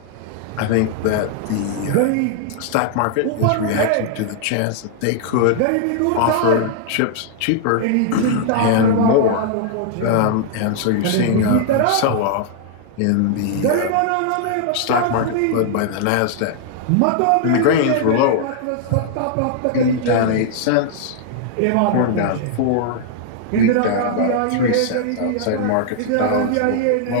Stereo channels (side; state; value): both; different; correlation -0.01